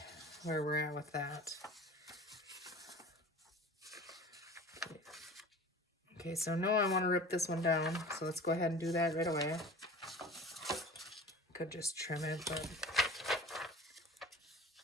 where we're at with that. Okay, so no, I want to rip this one down, so let's go ahead and do that right away. Could just trim it, but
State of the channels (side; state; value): both; normal; correlation 0.40